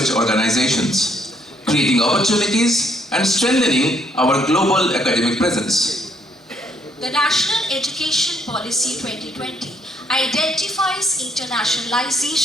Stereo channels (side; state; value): both; normal; correlation 0.69